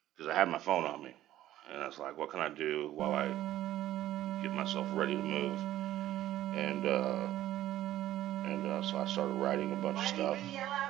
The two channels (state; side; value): quieter; left; 13.5 dB